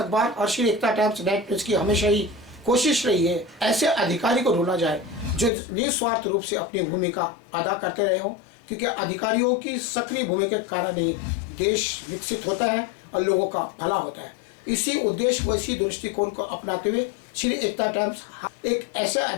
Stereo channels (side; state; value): right; drops out; at 5.5 s